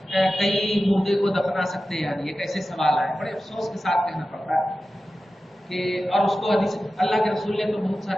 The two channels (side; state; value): both; normal; correlation 0.94